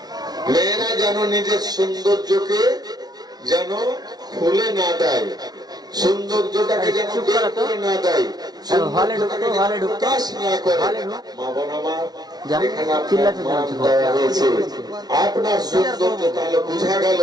মেয়েরা যেন নিজের সৌন্দর্যকে যেন খুলে না দেয়, সৌন্দর্যটাকে যেন বের করে না দেয়, প্রকাশ না করে। মা বোন আমার, এখানে আপনার সৌন্দর্য তাহলে বোঝা গেল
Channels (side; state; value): left; late; 0.19 ms